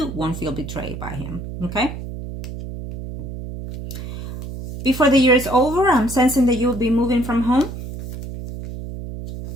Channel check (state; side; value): noise; right; hum, 9 dB below the sound